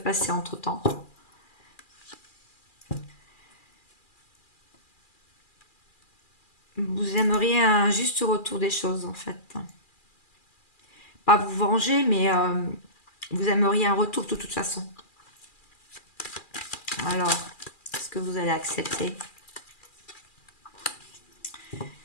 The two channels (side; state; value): right; late; 2.4 ms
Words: passer entre-temps. Vous aimeriez un juste retour des choses, en fait. Pas vous venger, mais vous aimeriez un retour de toute façon. Alors, est-ce que vous allez accepter?